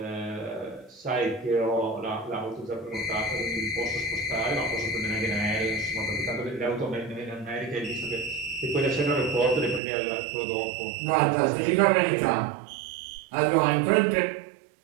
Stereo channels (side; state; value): left; drops out; at 9.8 s